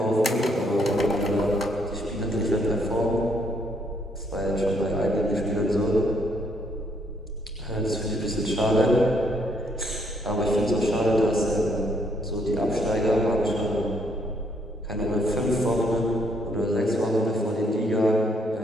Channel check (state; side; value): normal; both; correlation 0.70